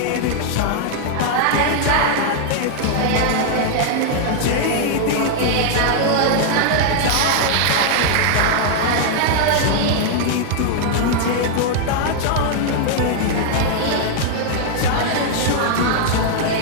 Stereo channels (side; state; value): both; different; correlation 0.00